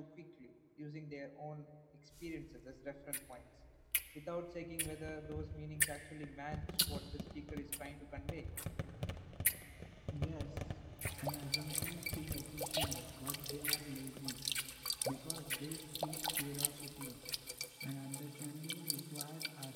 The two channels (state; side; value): identical; both; correlation 1.00